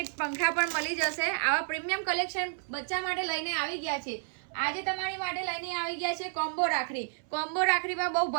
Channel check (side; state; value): left; silent; 57 dB below the other